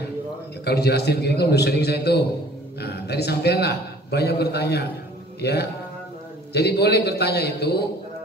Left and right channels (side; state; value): both; normal; correlation 0.51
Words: Ya, kalau jelasin gini kan udah sering saya itu. Nah, tadi sampailah banyak bertanya, ya. Jadi boleh bertanya itu